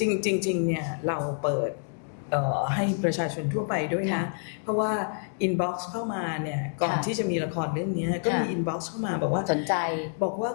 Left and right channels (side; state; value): right; silent; 60 dB below the other